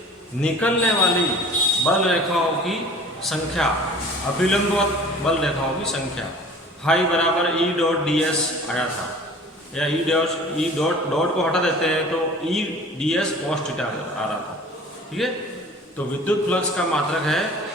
निकलने वाली बल रेखाओं की संख्या, अभिलंबवत बल रेखाओं की संख्या। फाई बराबर ई डॉट डी एस आया था, या ई डॉट को हटा देते हैं तो E D S cos theta आ रहा था। ठीक है, तो विद्युत फ्लक्स का मात्रक है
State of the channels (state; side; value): normal; both; correlation 0.45